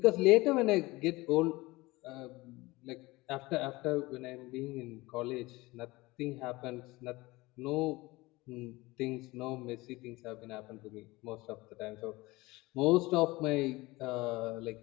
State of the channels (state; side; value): quieter; right; 21.2 dB